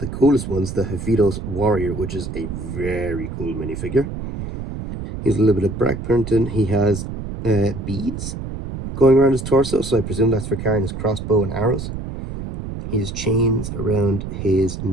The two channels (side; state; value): right; noise; rumble, 7 dB below the sound